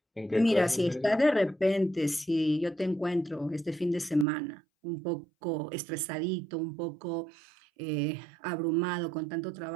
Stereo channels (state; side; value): drops out; left; at 4.2 s